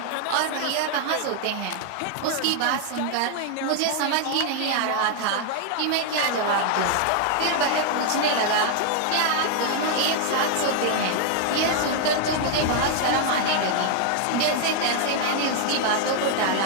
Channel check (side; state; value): both; different; correlation 0.00